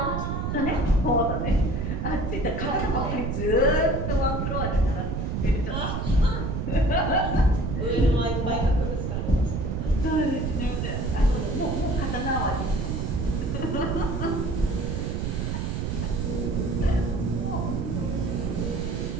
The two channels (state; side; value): noise; right; rumble, 1 dB below the sound